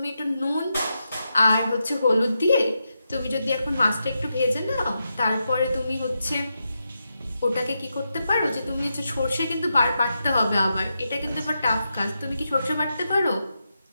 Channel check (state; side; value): inverted; both; correlation -0.86